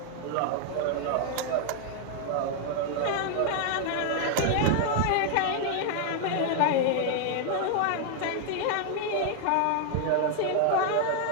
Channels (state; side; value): different; both; correlation 0.00